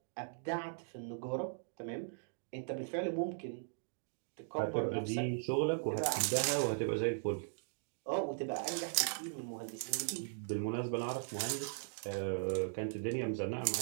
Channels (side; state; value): left; silent; digital silence